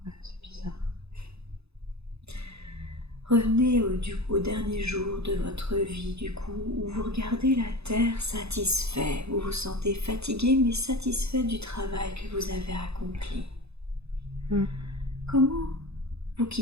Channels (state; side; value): late; left; 0.79 ms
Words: Ouais, c'est bizarre. Revenez au dernier jour de votre vie, du coup, où vous regardez la terre satisfait. Vous vous sentez fatigué, mais satisfait du travail que vous avez accompli. Comment vous